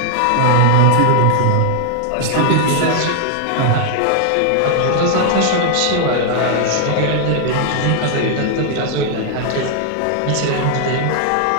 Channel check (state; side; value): different; both; correlation 0.00